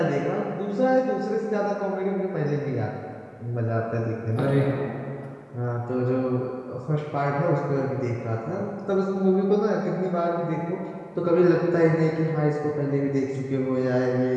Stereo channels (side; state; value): both; identical; correlation 1.00